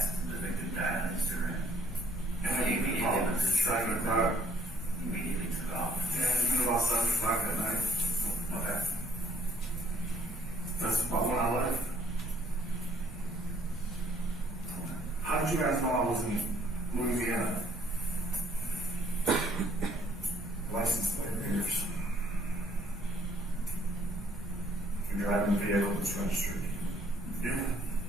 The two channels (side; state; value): both; normal; correlation 0.63